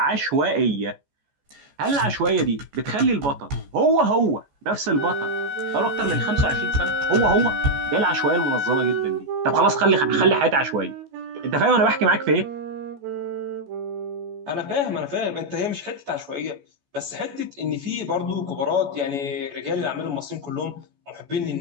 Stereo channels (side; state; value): left; late; 14 ms